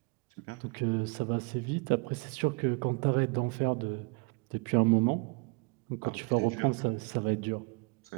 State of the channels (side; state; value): left; quieter; 31.1 dB